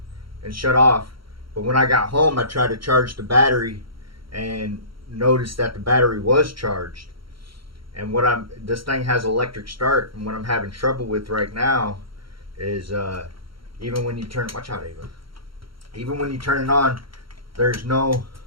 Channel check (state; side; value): late; left; 0.74 ms